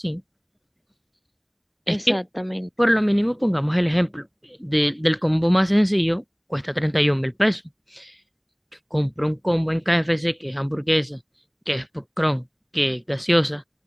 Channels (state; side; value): identical; both; correlation 1.00